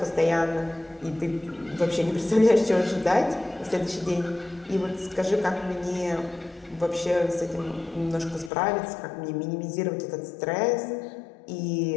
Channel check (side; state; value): right; drops out; at 8.5 s